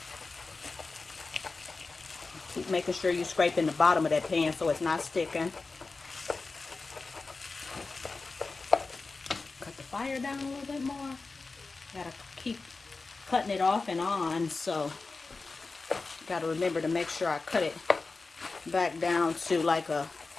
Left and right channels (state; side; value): quieter; right; 3.9 dB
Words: Keep making sure you scrape in the bottom of that pan so it's not sticking. Cut the fire down a little bit more. Gotta keep cutting it off and on, so gotta remember to make sure I cut it back down to like a